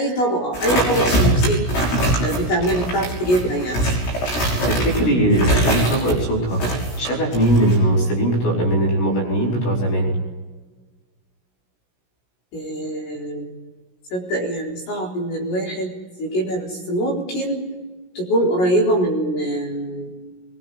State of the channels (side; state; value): right; late; 17 ms